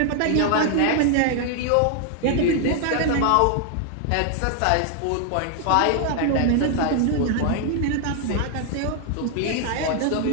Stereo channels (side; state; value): both; different; correlation 0.00